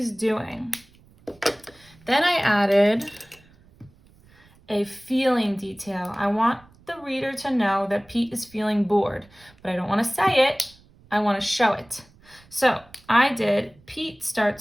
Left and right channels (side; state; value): right; noise; rumble, 28 dB below the sound